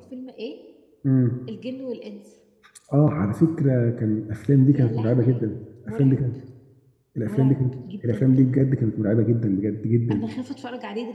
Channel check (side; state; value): both; identical; correlation 1.00